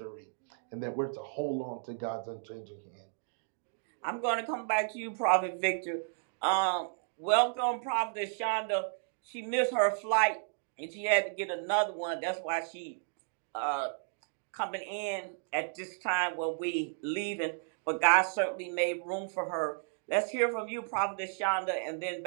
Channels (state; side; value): silent; left; digital silence